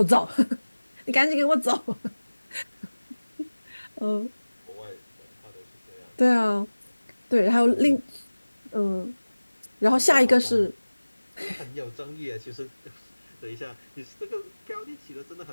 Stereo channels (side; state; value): both; inverted; correlation -1.00